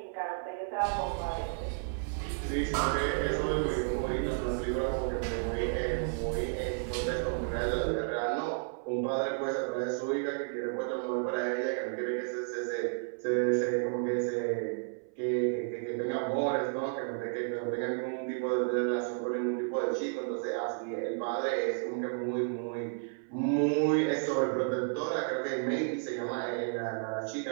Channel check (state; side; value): silent; left; 56 dB below the other